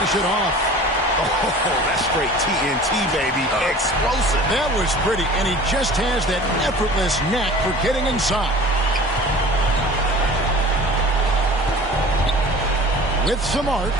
it off. Oh, that's straight TNT, baby. Explosive. That was pretty, and he just has that effortless knack for getting inside. With some arc,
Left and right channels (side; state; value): both; normal; correlation 0.42